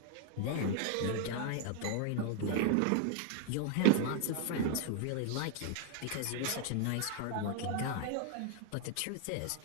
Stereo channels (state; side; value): different; both; correlation 0.00